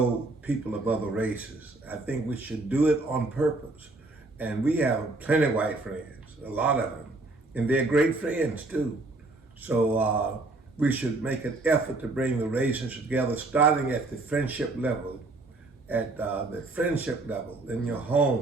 people of other races. I think we should do it on purpose. And we have plenty of white friends, a lot of them, and they're great friends too. So we should make an effort to bring the races together, starting at the friendship level, in your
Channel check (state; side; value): quieter; left; 3.1 dB